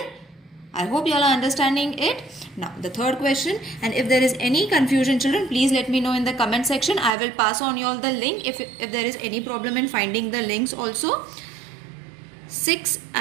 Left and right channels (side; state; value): left; drops out; at 7.2 s